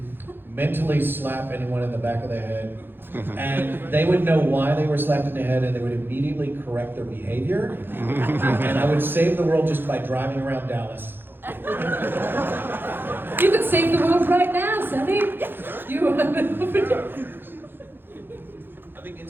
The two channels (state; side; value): late; left; 0.10 ms